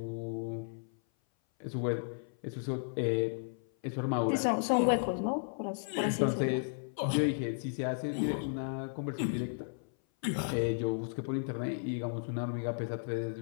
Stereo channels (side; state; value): right; silent; 55 dB below the other